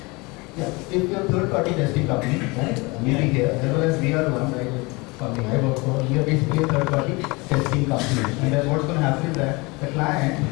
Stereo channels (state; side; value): quieter; right; 25.8 dB